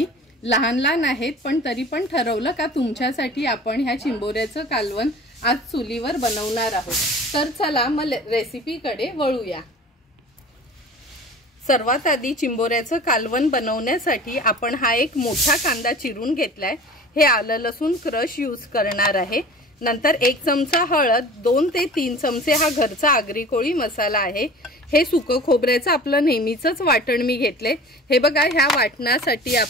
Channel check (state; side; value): normal; both; correlation 0.41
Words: लहान लहान आहेत पण तरी पण ठरवलं का तुमच्यासाठी आपण ह्या चिंबोऱ्याचं कालवण आज चुलीवर बनवणार आहोत। तर चला मग रेसिपीकडे वळूया। सर्वात आधी चिंबोऱ्याचं कालवण बनवण्यासाठी आपण हा एक मोठा कांदा चिरून घेतलाय। हे आलं लसूण क्रश यूज करणार आहे। नंतर 1 चमचा हळद, 2 ते 3 चमचे हा घरचा आगरी कोळी मसाला आहे। हे सुकं खोबऱ्याचं आपलं नेहमीचंच वाटण मी घेतले। हे बघा, ह्या वाटणासाठी